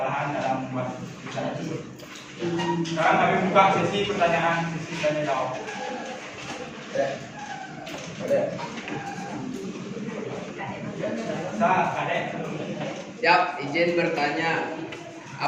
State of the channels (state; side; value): identical; both; correlation 1.00